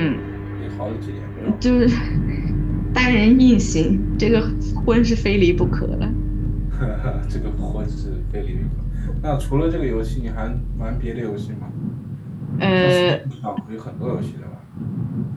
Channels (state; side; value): identical; both; correlation 1.00